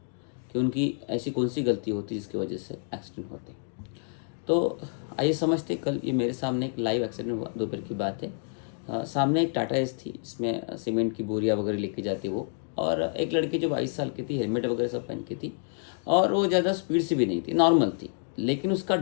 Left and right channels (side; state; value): right; silent; 59 dB below the other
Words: कि उनकी ऐसी कौन सी गलती होती है जिसकी वजह से एक्सीडेंट होते हैं। तो आइए समझते, कल ये मेरे सामने एक लाइव एक्सीडेंट हुआ, दोपहर की बात है। सामने एक टाटा एस थी, इसमें सीमेंट की बोरियाँ वगैरह लेके जाती वो, और एक लड़की जो 22 साल की थी, हेलमेट वगैरह सब पहन की थी, और वो ज़्यादा स्पीड से भी नहीं थी, नॉर्मल थी, लेकिन उसका